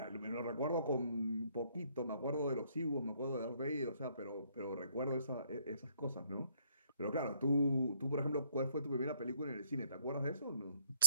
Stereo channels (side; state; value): both; inverted; correlation -0.68